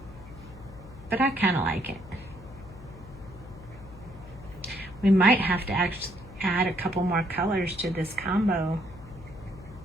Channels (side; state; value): left; noise; hum, 17 dB below the sound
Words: but I kind of like it. We might have to actually add a couple more colors to this combo.